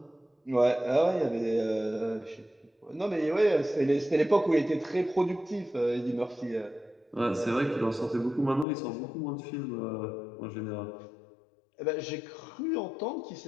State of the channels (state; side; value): drops out; right; at 8.7 s